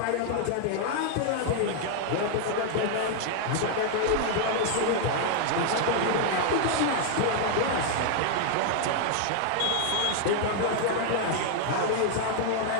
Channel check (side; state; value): both; different; correlation 0.00